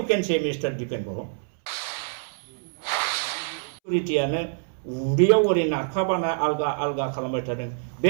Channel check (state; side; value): silent; left; 61 dB below the other